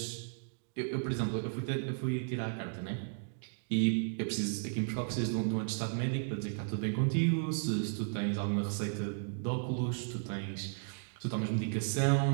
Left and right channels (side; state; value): left; silent; digital silence